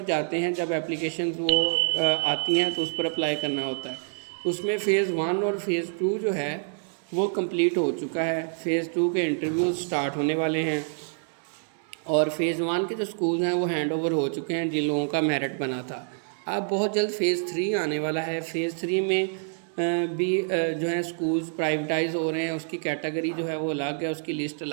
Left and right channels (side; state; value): left; silent; 60 dB below the other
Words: जाते हैं, जब एप्लीकेशन वो आती हैं तो उस पर अप्लाई करना होता है। उसमें फ़ेज़ 1 और फ़ेज़ 2 जो है वो कंप्लीट हो चुका है। फ़ेज़ 2 के इंटरव्यूज़ स्टार्ट होने वाले हैं और फ़ेज़ 1 के जो स्कूल हैं वो हैंड ओवर हो चुके हैं जिन लोगों का मेरिट बना था। अब बहुत जल्द फ़ेज़ 3 आने वाला है। फ़ेज़ 3 में भी जो है स्कूल्स प्राइवेटाइज़ हो रहे हैं, उसकी कैटेगरी जो है वो अलग है, उसकी लिस्ट